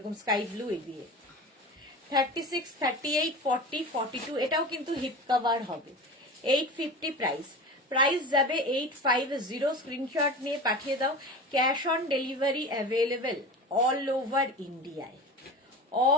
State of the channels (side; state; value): both; normal; correlation 0.32